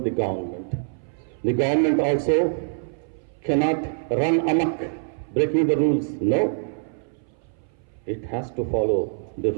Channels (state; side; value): silent; left; 59 dB below the other